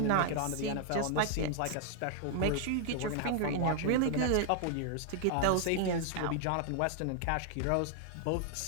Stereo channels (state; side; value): different; both; correlation 0.00